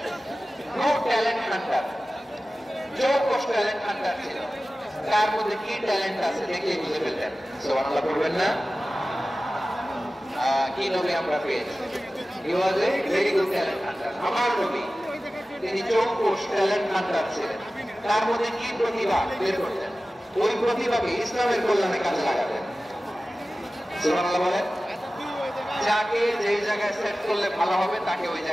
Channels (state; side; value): normal; both; correlation 0.96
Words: good talent hunter, চৌকস ট্যালেন্ট হান্টার ছিল। তার মধ্যে কি ট্যালেন্ট আছে দেখে বুঝে ফেলতেন। সুবহানাল্লাহ বলবেন না? কি নবী আমরা পেয়েছি? He was a very good talent hunter. আমার নবী তিনি চৌকস ট্যালেন্ট হান্টার ছিলেন। তার মধ্যে কি প্রতিভা বের করতেন, ওই প্রতিভাকে ইসলামের কল্যাণে কাজে লাগাতেন। সুবহানাল্লাহ বলেন। যাকে যেই জায়গায় সেট করলে ভালো হবে তাকে ওই